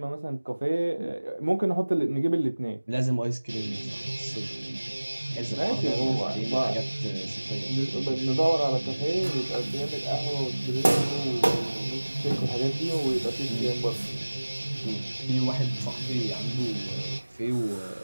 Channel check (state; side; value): inverted; both; correlation -1.00